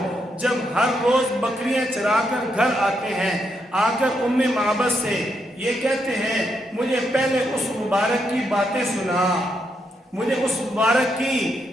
جب ہر روز بکریاں چرا کر گھر آتے ہیں، آ کر معبد سے یہ کہتے ہیں، مجھے پہلے اس مبارک کی باتیں سنا، مجھے اس مبارک کی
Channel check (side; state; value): both; normal; correlation 0.80